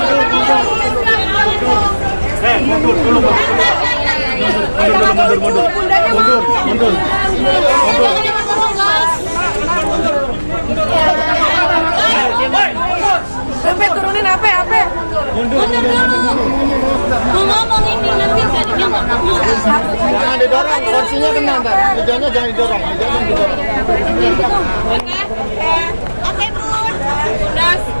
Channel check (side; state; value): both; inverted; correlation -1.00